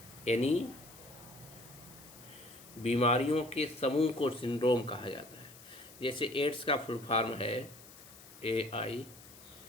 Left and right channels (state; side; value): noise; left; hiss, 19 dB below the sound